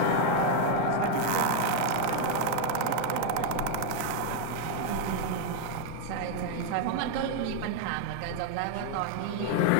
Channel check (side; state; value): both; different; correlation 0.01